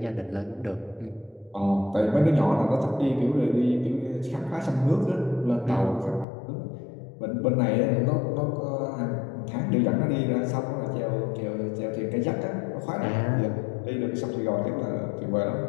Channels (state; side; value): drops out; right; at 6.2 s